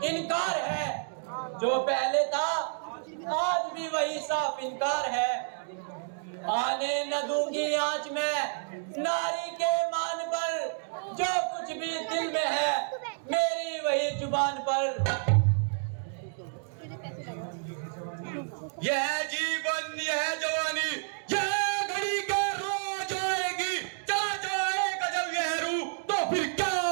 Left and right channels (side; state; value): left; silent; digital silence